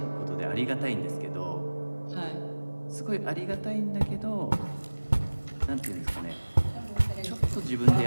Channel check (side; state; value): both; inverted; correlation -1.00